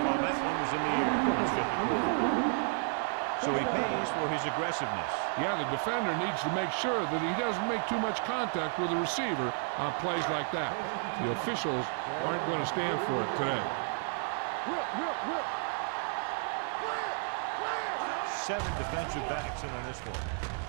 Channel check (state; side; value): silent; left; 56 dB below the other